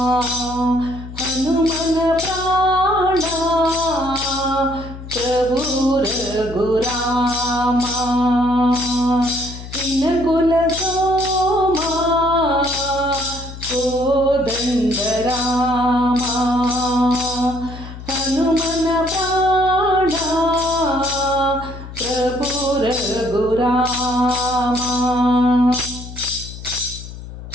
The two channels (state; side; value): noise; left; hum, 12 dB below the sound